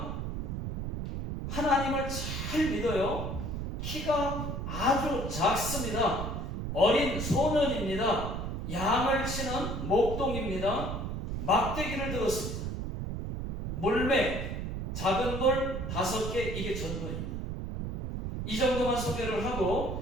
하나님을 잘 믿어요. 키가 아주 작습니다. 어린 소년입니다. 양을 치는 목동입니다. 막대기를 들었습니다. 물매, 작은 돌 5개, 이게 전도입니다. 이 정도만 소개를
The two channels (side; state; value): right; noise; rumble, 4 dB below the sound